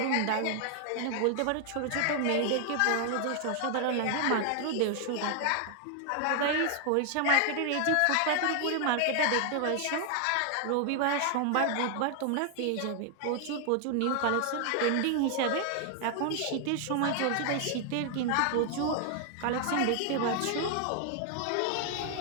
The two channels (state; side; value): different; both; correlation 0.00